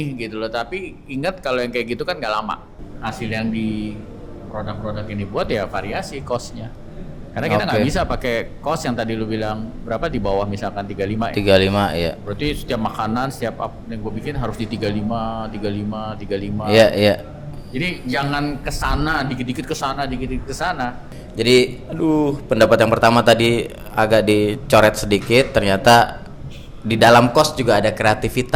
gitu loh. Tapi ingat kalau yang kayak gitu kan nggak lama. Hasil yang di produk-produk ini buat ya variasi cost-nya. Karena kita nggak bisa pakai cost yang tadi lu bilang berapa di bawah misalkan 35 ya. 35 ya. Berarti setiap makanan, setiap apa yang gue bikin harus di 35. Iya. Jadi jangan kesana, dikit-dikit kesana, dikit-dikit kesana. Jadi, pendapat yang pertama tadi agak dicoret sedikit. Ternyata di dalam cost juga ada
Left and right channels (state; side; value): identical; both; correlation 1.00